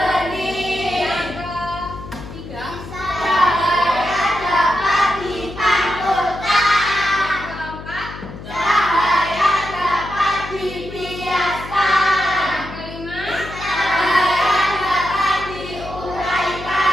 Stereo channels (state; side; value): noise; left; hum, 13 dB below the sound